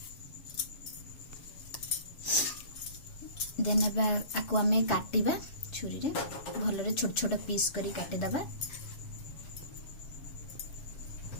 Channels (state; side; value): late; right; 7.3 ms